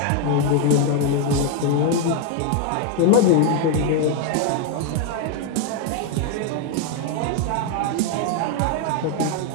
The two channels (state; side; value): different; both; correlation 0.01